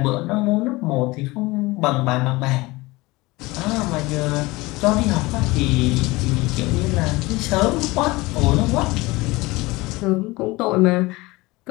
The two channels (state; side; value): quieter; right; 21.8 dB